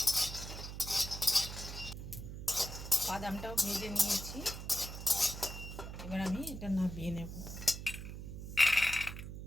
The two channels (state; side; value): noise; right; hum, 9 dB below the sound